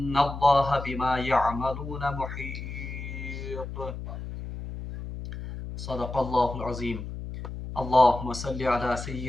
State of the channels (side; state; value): left; noise; hum, 8 dB below the sound